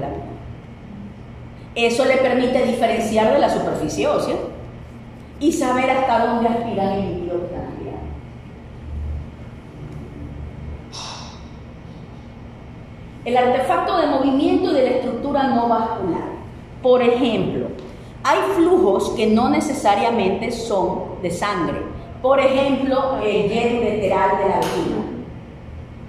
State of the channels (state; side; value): identical; both; correlation 1.00